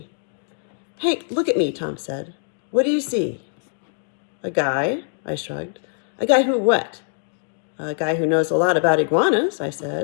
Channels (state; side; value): silent; right; digital silence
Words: Hank, look at me, Tom said. What do you see? A guy, I shrugged. A guy who what? A guy who knows a lot about iguanas, I